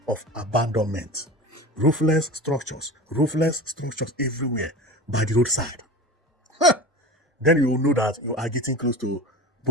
of abandonment. Roofless structures everywhere by the roadside. Then you will know that you are getting close to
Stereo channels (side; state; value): both; normal; correlation 0.32